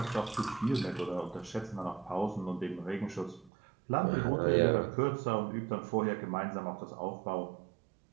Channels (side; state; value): left; drops out; at 3.5 s